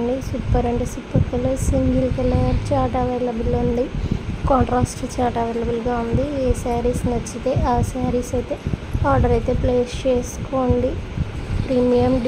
సూపర్ అంటే super colour, single colour chart available ఉంది, కాంట్రాస్ట్ చార్ట్ అవైలబుల్గా ఉంది. ఏ శారీస్ నచ్చితే ఆ శారీస్ అయితే ఆర్డర్ అయితే ప్లేస్ చేసుకోండి. ప్రీమియం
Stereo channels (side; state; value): both; identical; correlation 1.00